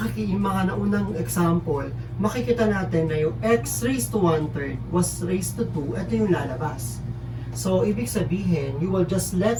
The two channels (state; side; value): identical; both; correlation 1.00